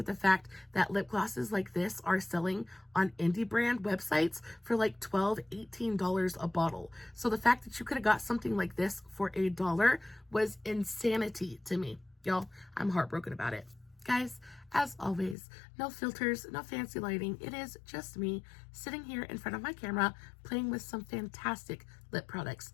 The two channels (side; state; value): right; drops out; at 15.4 s